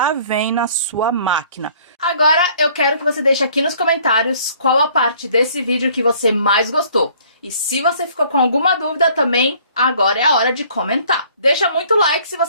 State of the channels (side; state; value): both; inverted; correlation -0.57